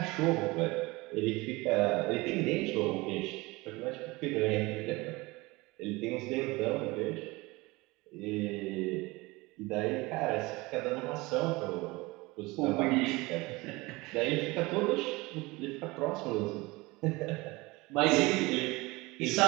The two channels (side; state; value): left; quieter; 22.7 dB